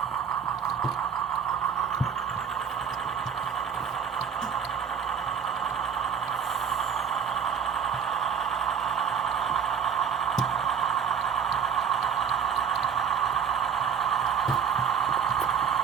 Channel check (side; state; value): left; quieter; 7.4 dB